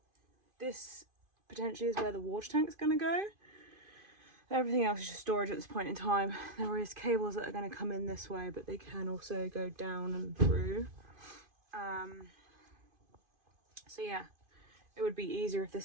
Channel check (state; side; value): late; left; 2.5 ms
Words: This potentially is where the water tank's going to go. Everything else is just storage at this point in time. There is cables that are going to come in this way, but they can also go down and through. So yeah, it would be easier if